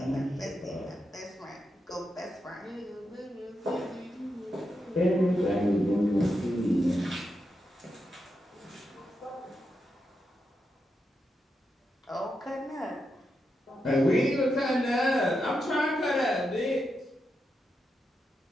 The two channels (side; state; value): both; normal; correlation 0.86